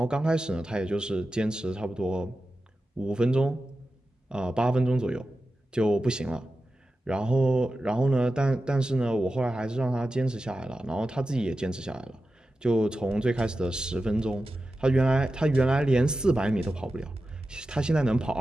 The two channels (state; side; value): normal; both; correlation 0.92